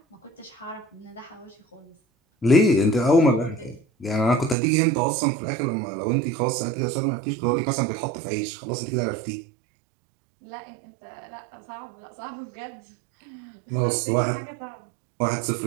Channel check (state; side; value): drops out; left; at 4.5 s